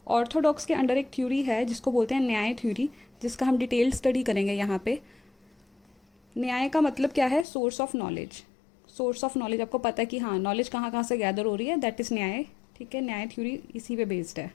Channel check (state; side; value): drops out; right; at 7.5 s